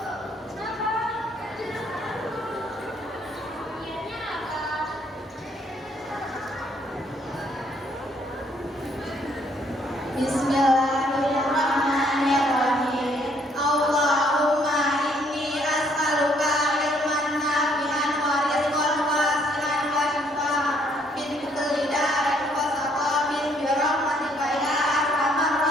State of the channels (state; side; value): normal; both; correlation 0.66